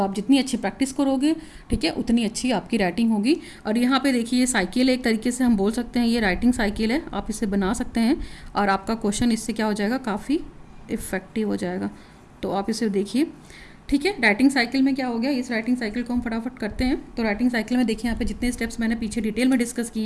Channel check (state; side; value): identical; both; correlation 1.00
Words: आप जितनी अच्छी प्रैक्टिस करोगे, ठीक है, उतनी अच्छी आपकी राइटिंग होगी। और यहाँ पे देखिए, ये साइकिल है, एक तरीके से हम बोल सकते हैं ये राइटिंग साइकिल है, आप इसे बना सकते हैं और आपका क्वेश्चन इससे क्या हो जाएगा, काफ़ी इफ़ेक्टिव हो जाएगा। तो आप इसे देखिए, ठीक है। राइटिंग साइकिल में क्या हो गया, इस राइटिंग साइकिल को हम फटाफट करते हैं। तो राइटिंग साइकिल में देखिए, यहाँ पे जितने स्टेप्स मैंने पीछे डिटेल में डिस्कस